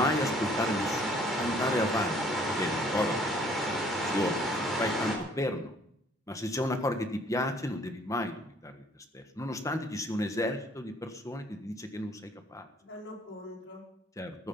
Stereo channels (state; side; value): normal; both; correlation 0.59